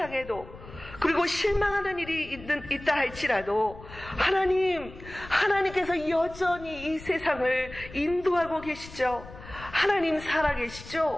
그리고 실망하는 일이 있다 할지라도 하나님께서 여전히 이 세상을 인도하고 계시죠. 하나님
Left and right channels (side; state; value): left; noise; rumble, 16 dB below the sound